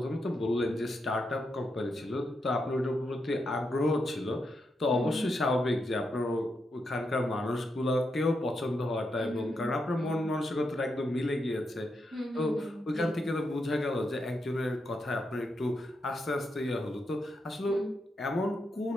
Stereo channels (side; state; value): both; normal; correlation 0.83